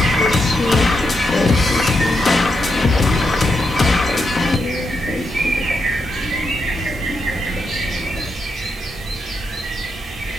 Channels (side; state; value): both; normal; correlation 0.83